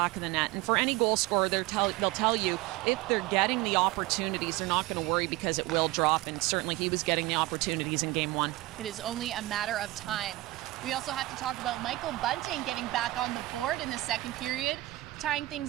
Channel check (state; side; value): quieter; left; 18.8 dB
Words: of the net. And for any goal scorer, they'll tell you if they're getting the opportunities, they're not going to worry because it will drop, and certainly he was getting the opportunities in game 1. It is only a matter of time. We also have to talk about Michael Bunting getting back on the board in the second period, tying